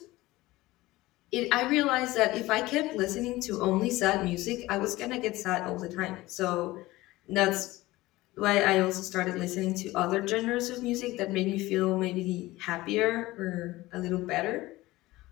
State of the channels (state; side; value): quieter; right; 18.7 dB